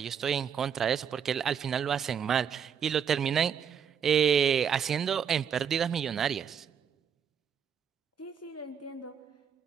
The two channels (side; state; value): left; quieter; 7.8 dB